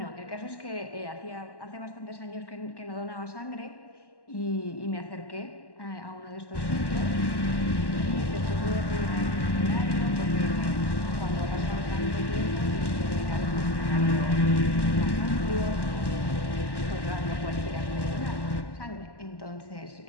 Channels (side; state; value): right; late; 1.1 ms